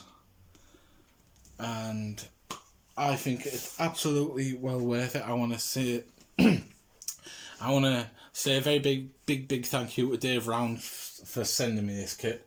and I think it's absolutely well worth it. I want to say I want to say a very big thank you to Dave Round for sending me this kit.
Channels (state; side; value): identical; both; correlation 1.00